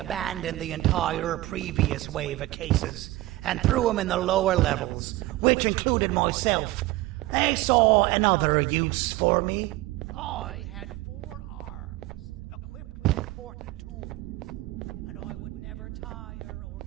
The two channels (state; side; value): quieter; left; 18.3 dB